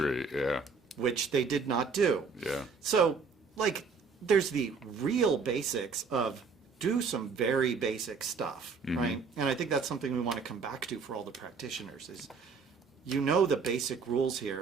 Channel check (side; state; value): left; quieter; 5.0 dB